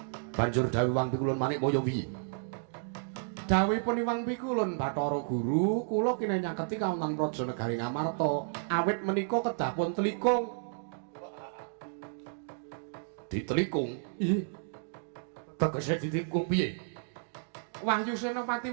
Banjur dawuh Wang Pikulun Manikmaya piye? Dawuhipun Wang Pikulun Bathara Guru, kula kene nyaketi kawonten Praja Negari Ngamarta. Awit menika kedah pun telikung. Ditelikung? Iya. Tegese ditelikung piye? Wahyu Senopati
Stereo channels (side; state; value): left; silent; digital silence